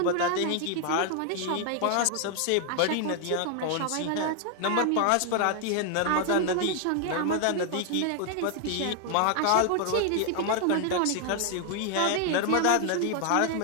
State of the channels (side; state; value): both; different; correlation 0.00